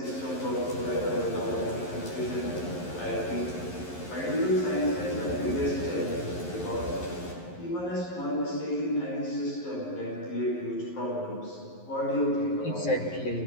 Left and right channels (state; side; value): late; right; 11 ms